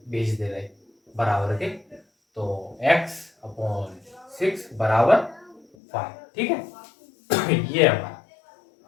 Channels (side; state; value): right; drops out; at 5.8 s